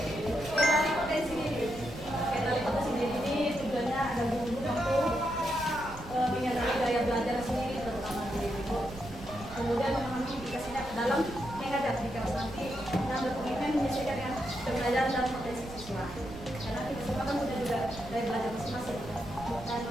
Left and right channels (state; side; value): noise; right; rumble, 14 dB below the sound